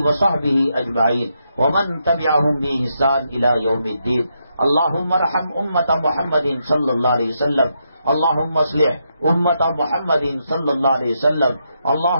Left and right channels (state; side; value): inverted; both; correlation -0.81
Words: وصحبہ اجمعین ومن تبعہم بإحسان الی یوم الدین. اللہم ارحم امت محمد صلی اللہ علیہ وسلم، اللہم اصلح امت محمد صلی اللہ علیہ وسلم،